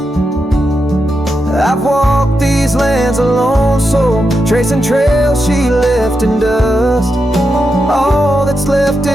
I've walked these lands alone, so tracing trails she left in dust. All that's left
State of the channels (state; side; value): normal; both; correlation 0.86